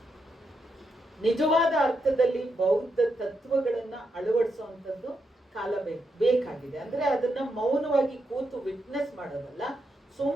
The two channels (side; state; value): both; normal; correlation 0.82